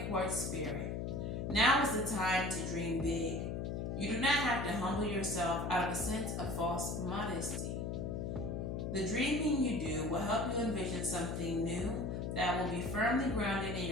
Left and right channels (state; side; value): noise; left; hum, 2 dB below the sound